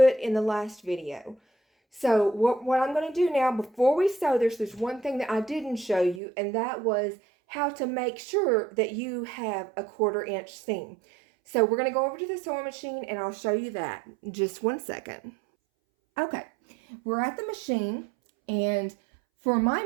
in the last video. So what I'm going to do now, before we sew this, there's one thing that I didn't show you, and that was how to make sure that you have a 1/4 inch seam. So we're going to go over to the sewing machine, and I'll show you that in just 1 second. Okay, we're at the machine, and for my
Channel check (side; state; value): left; drops out; at 6.2 s